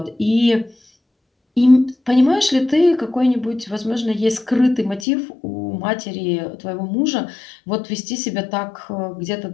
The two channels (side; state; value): right; drops out; at 5.1 s